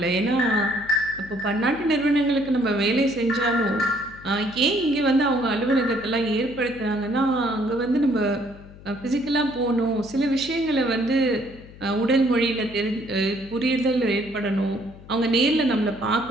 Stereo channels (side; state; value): left; noise; hum, 19 dB below the sound